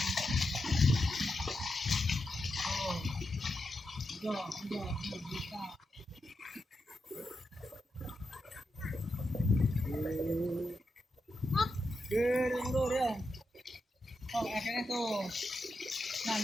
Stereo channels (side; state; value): both; normal; correlation 0.86